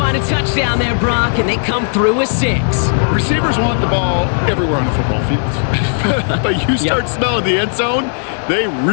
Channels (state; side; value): silent; right; 70 dB below the other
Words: a touchdown there, Brock, and they come through with 6. Receivers want the ball everywhere on the football field. But you start smelling the end zone, they